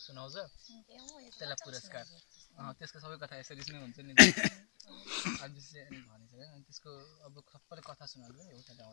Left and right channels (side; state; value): right; silent; digital silence